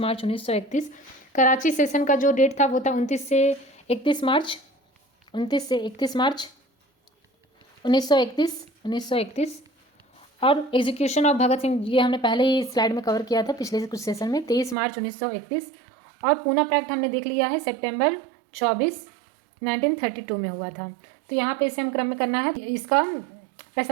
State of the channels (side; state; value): left; drops out; at 14.8 s